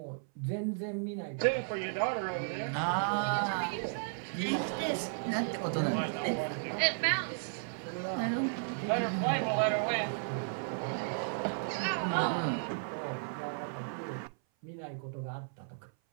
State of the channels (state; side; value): silent; left; 55 dB below the other